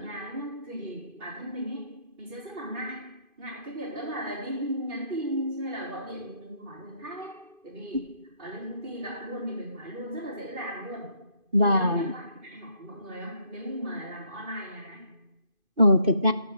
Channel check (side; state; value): left; late; 2.5 ms